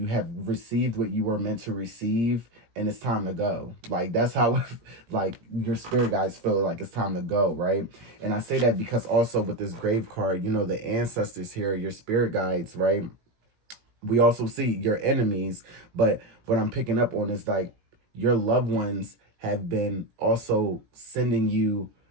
have received what you were meant to receive, and it's time to go. Like, that's how like your spirit guides feel like it's time to go, right? And I say that because also with this grave card, the ancestors here, your spirit guides, right? We also see your enemies, but what I'm picking up on is like your loved ones have been also sending you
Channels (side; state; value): left; late; 17 ms